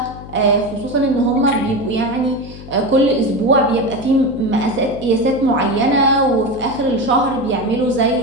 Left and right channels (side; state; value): left; noise; hum, 15 dB below the sound